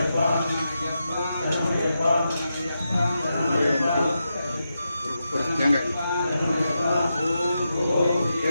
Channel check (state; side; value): inverted; both; correlation -0.87